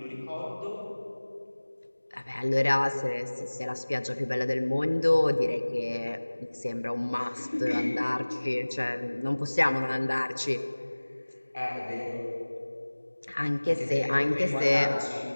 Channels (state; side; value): inverted; both; correlation -1.00